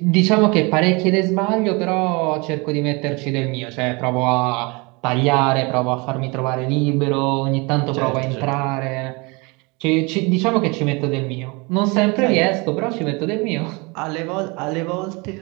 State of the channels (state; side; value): quieter; left; 27.8 dB